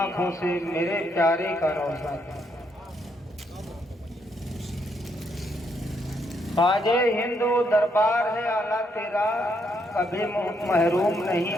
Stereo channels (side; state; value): both; normal; correlation 0.75